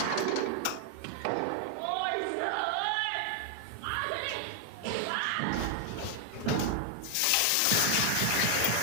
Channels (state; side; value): different; both; correlation 0.00